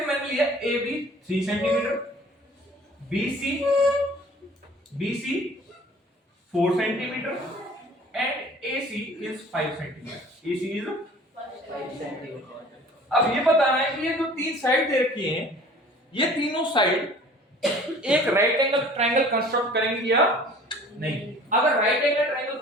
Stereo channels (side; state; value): both; normal; correlation 0.48